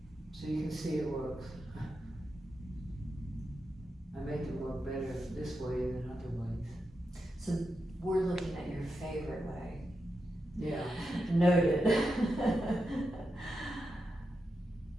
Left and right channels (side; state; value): both; normal; correlation 0.87